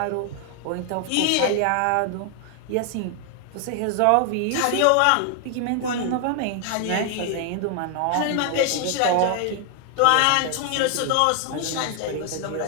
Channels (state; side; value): different; both; correlation 0.00